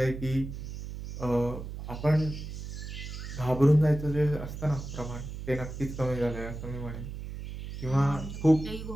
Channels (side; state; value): right; noise; hum, 8 dB below the sound